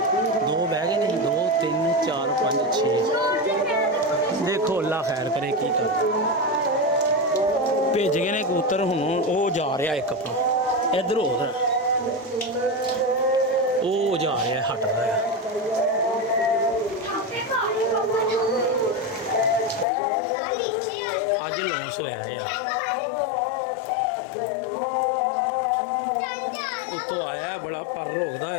2 ਬਹਿ ਗਏ ਨੇ 2 3 4 5 6 देखो अल्लाह खैर करे की कर ਭੇਜ ਗਏ ਨੇ ਕਬੂਤਰ, ਹੁਣ ਉਹ ਜਾ ਰਿਹਾ ਇੱਕ ਆਪਣਾ ਇੱਧਰ ਉਧਰ, ਉਹ ਜਾ ਰਿਹਾ ਹਟ ਰਿਹਾ। ਅੱਜ ਲੌਂਸ ਹੋਇਆ ਯਾਰ, ਉੱਤੋਂ ਆਇਆ ਬੜਾ ਪਰ ਰੋਕਦਾ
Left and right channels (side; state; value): right; drops out; at 19.9 s